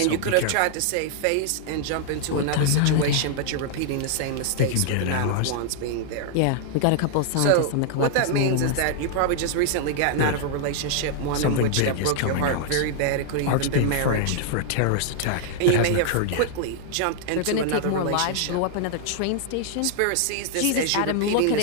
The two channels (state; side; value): different; both; correlation 0.00